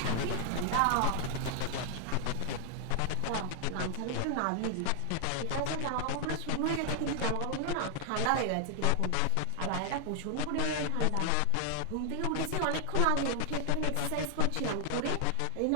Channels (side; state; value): both; different; correlation 0.00